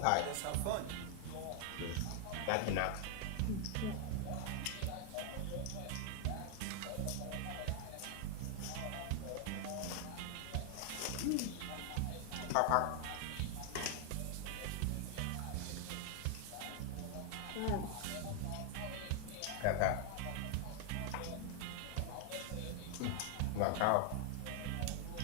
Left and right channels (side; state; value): both; different; correlation 0.00